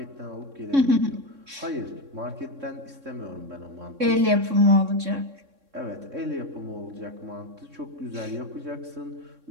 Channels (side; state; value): left; late; 3.6 ms